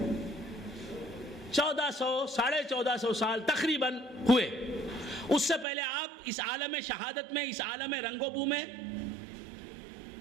1400 سال تقریباً ہوئے، اس سے پہلے آپ اس عالم شہادت میں، اس عالم رنگ و بو میں،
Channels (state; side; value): drops out; left; at 5.7 s